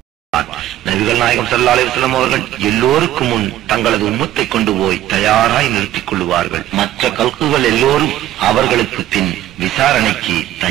நபிகள் நாயகம் ஸல்லல்லாஹு அலைஹி வஸல்லம் அவர்கள் எல்லோருக்கும் முன் தங்களது உம்மத்தை கொண்டு போய் தயாராய் நிறுத்திக் கொள்வார்கள். மற்ற கல்குகள் எல்லோரும் அவர்களுக்கு பின் விசாரணைக்கு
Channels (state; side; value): quieter; left; 13.6 dB